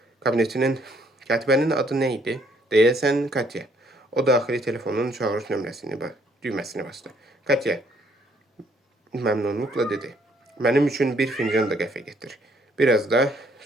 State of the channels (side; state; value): both; normal; correlation 0.67